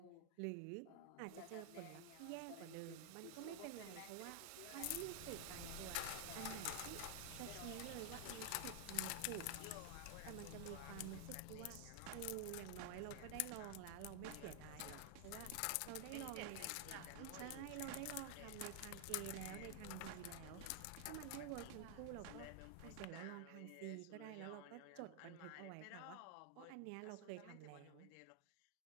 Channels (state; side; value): different; both; correlation 0.00